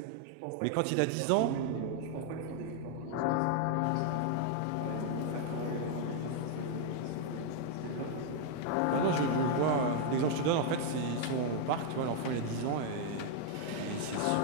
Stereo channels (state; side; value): different; both; correlation 0.00